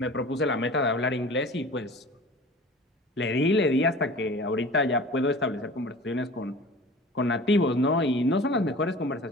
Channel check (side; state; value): both; normal; correlation 0.40